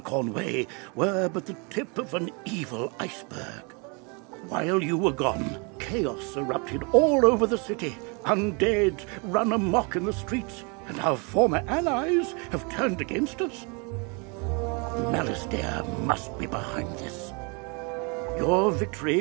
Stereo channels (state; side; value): quieter; left; 32.5 dB